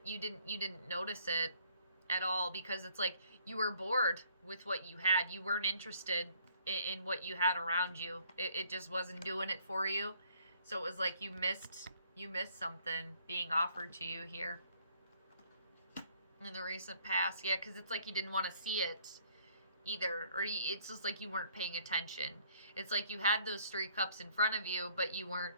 You didn't notice it at all, because it's like you were bored with what you had. You weren't interested in what you had around you. It just wasn't doing it for you. So it was like you missed something being offered to you here in the recent past. Yeah, because it's like you didn't want to see it either, or it's just like you weren't paying attention. It's like you had those three cups in front of you, but you weren't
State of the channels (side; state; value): both; inverted; correlation -0.62